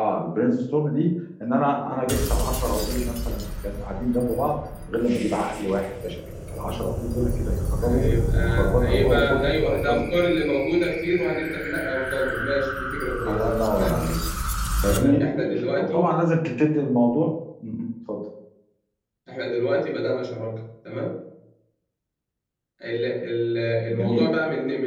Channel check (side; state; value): both; identical; correlation 1.00